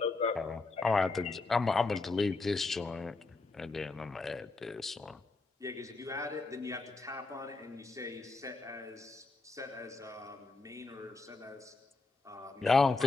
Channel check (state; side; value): quieter; right; 3.7 dB